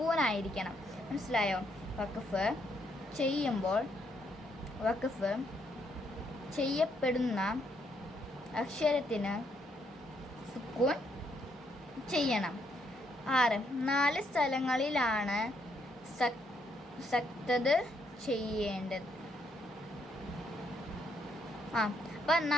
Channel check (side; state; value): both; normal; correlation 0.74